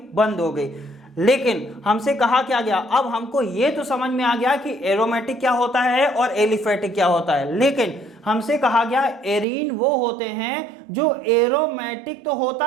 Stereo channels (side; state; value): left; drops out; at 9.5 s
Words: बंद हो गई। लेकिन हमसे कहा क्या गया? अब हमको ये तो समझ में आ गया कि एरोमेटिक क्या होता है और एलिफेटिक क्या होता है, लेकिन हमसे कहा गया एरीन वो होते हैं जो एरोमेटिक तो